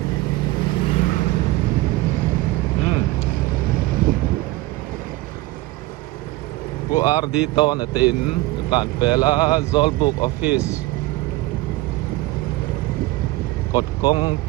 bu RD to na tin tan pela Zolbook office kod kong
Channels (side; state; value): left; quieter; 19.1 dB